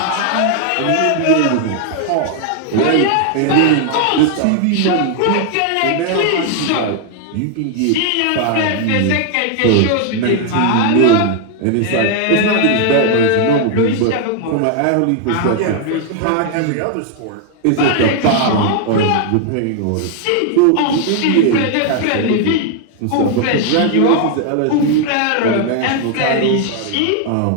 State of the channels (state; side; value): different; both; correlation 0.00